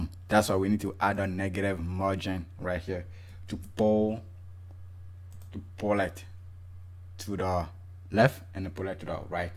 That's why we need to add a negative margin right here to pull it to the left and pull it to the right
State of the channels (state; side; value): identical; both; correlation 1.00